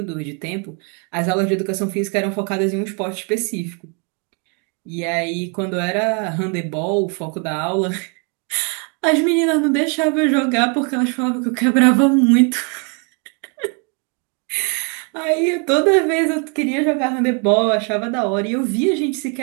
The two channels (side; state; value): left; quieter; 35.9 dB